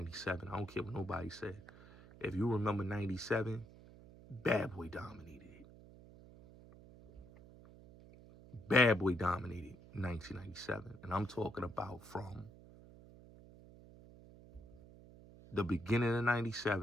I don't care what nobody said. If you remember 97, Bad Boy dominated it. Bad Boy dominated 1997. And I'm talking about from the beginning of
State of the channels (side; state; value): right; noise; hum, 20 dB below the sound